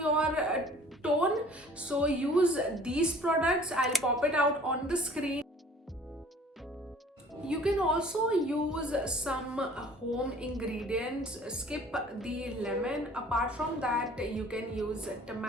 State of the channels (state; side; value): normal; both; correlation 0.50